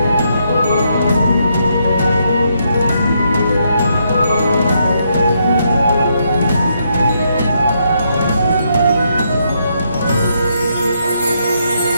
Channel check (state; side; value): inverted; both; correlation -0.77